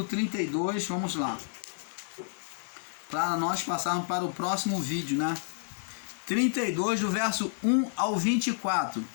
32, vamos lá. Para nós passarmos para o próximo vídeo, né? 32, do verso 1 ao 24.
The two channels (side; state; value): right; silent; 58 dB below the other